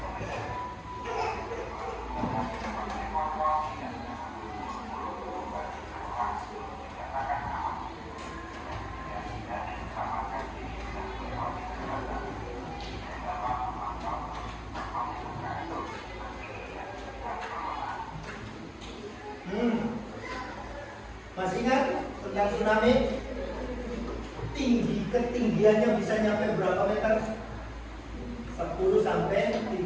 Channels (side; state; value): both; identical; correlation 1.00